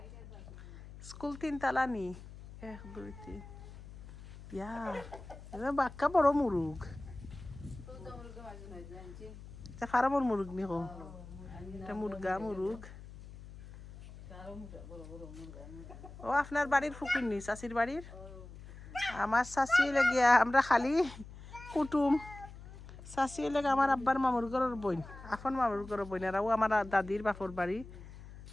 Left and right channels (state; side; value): noise; left; hum, 15 dB below the sound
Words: স্কুল 3 তালা নি 1 2 3 ইয়া এবার বাক্কা বড় মুরুগ খারাপর মুরুগ নি কো এটা মুরগা মুরুগ ও আপনার বাড়ির ফুকুর নি চাষির বাড়ির আমার চাষি লেগিয়া আমরা খালি কুটুম চাষি লেগে আমার আব্বার মামুর ঘরের বইন আপন মামুর ঘরের বইন আর ও আমার দাদির বাপর বাড়ি